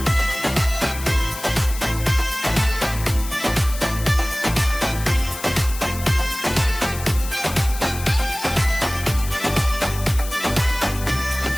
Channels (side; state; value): left; noise; hiss, 12 dB below the sound